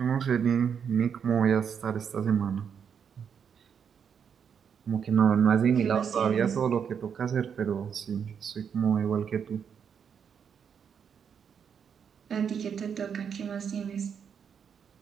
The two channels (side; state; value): left; quieter; 7.3 dB